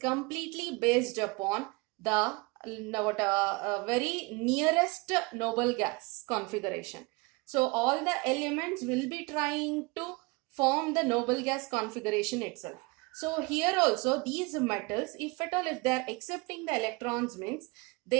completely based upon the very nearest noble gas configuration. So all the elements will be trying to form the noble gas configuration itself. So here also these metals, if at all, if they are accepting the electrons, means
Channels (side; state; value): left; quieter; 27.0 dB